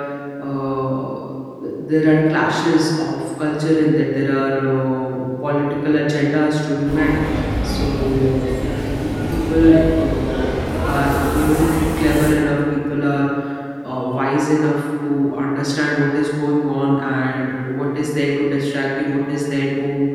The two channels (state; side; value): identical; both; correlation 1.00